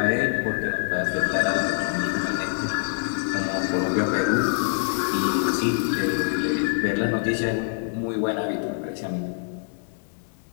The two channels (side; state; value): right; silent; digital silence